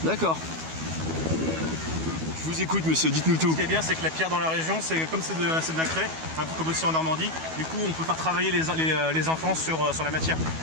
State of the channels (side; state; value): left; late; 12 ms